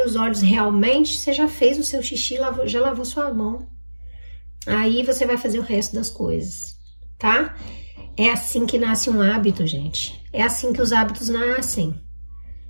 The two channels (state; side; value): inverted; both; correlation -1.00